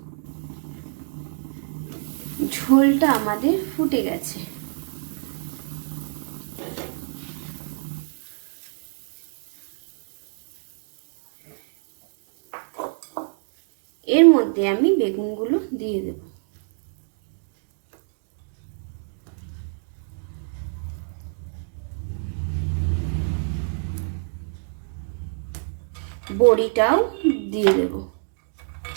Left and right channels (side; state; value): left; silent; 61 dB below the other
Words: ঝোলটা আমাদের ফুটে গেছে। এর মধ্যে আমি বেগুনগুলো দিয়ে দেব। বড়িটাও দিয়ে দেব।